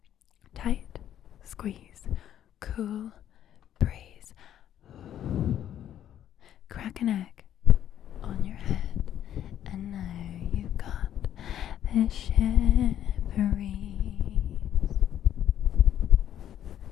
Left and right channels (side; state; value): right; quieter; 10.8 dB